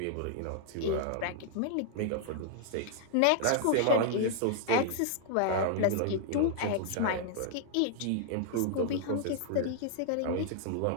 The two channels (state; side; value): different; both; correlation -0.01